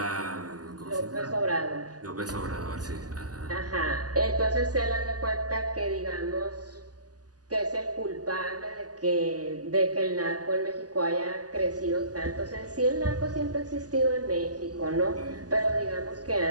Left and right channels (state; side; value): late; left; 0.67 ms